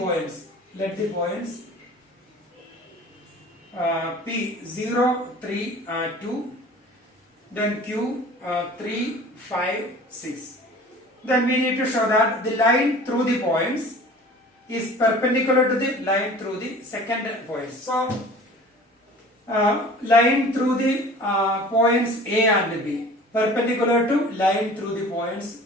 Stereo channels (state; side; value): normal; both; correlation 0.44